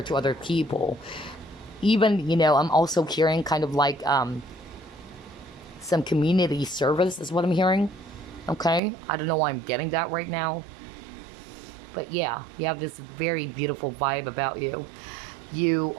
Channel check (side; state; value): left; drops out; at 8.8 s